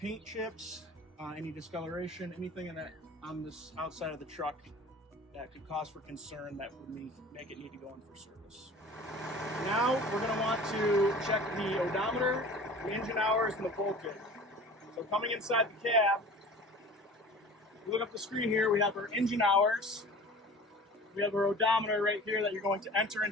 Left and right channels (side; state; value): both; normal; correlation 0.42